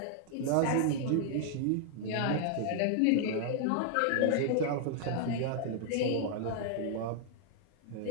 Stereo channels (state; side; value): different; both; correlation 0.00